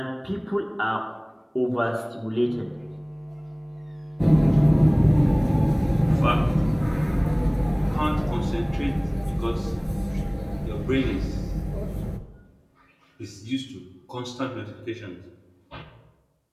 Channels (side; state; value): both; identical; correlation 1.00